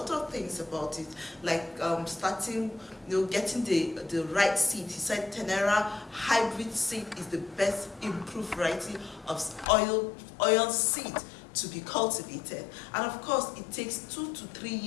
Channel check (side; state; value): right; drops out; at 9.7 s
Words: of things about it, like starting, getting the right seed. He said Tenera hybrid seed is the best improved variety of oil seed to be cultivated, and of course it takes 2 to 3